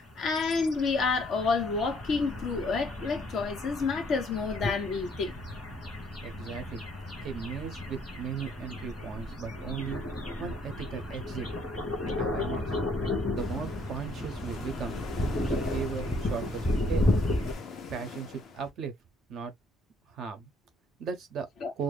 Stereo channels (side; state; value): both; normal; correlation 0.65